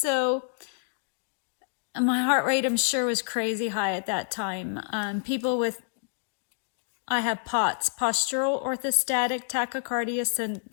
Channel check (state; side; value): silent; right; digital silence